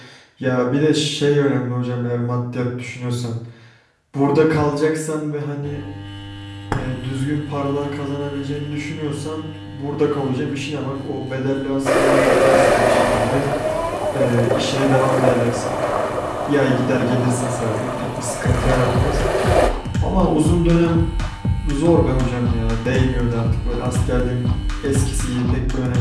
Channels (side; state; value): both; identical; correlation 1.00